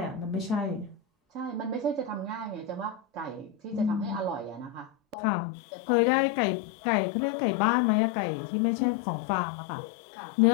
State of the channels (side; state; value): right; drops out; at 5.2 s